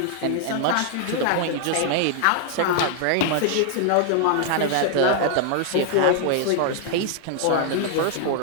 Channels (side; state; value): both; different; correlation 0.00